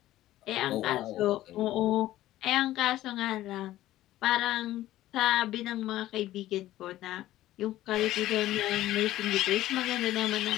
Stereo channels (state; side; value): quieter; right; 14.7 dB